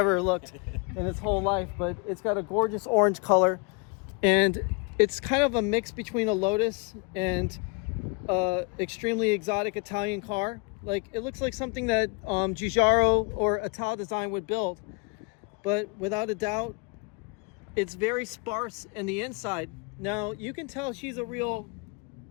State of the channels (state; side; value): quieter; right; 32.9 dB